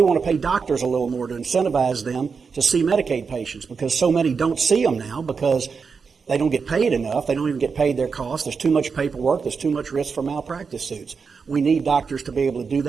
want to pay doctors a little more to incentivize them to see Medicaid patients because so many don't see them now because they don't get paid enough. They don't even get paid their costs. There's too much paperwork. There's too much risk for malpractice suits. We need doctors to be able to do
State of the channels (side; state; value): left; quieter; 5.4 dB